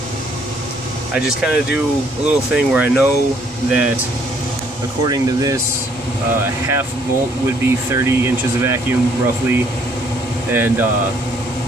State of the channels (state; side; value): normal; both; correlation 0.65